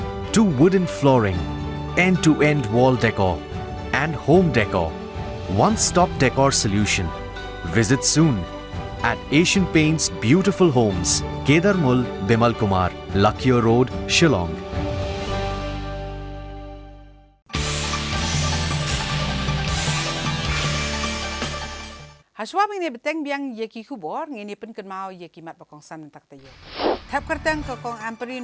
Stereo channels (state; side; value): identical; both; correlation 1.00